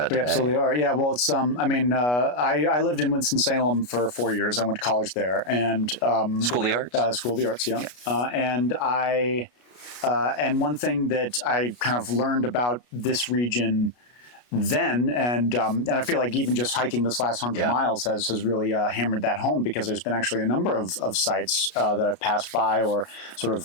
today. We absolutely are. Yeah. Well, it's I lived in Winston-Salem for 4 years. I went to college there, and School of the Arts. School of the Arts. Yeah. And one thing that I kind of learned about this region then, and I feel like even just hiking this last 100 miles has really hammered that home, because there's been actually a number of sites that I've passed by or sort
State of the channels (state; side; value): late; right; 33 ms